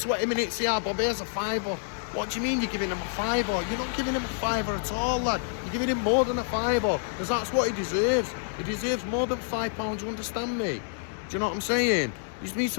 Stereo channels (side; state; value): right; silent; digital silence